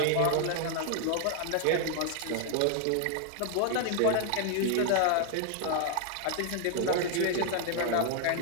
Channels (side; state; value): both; different; correlation 0.00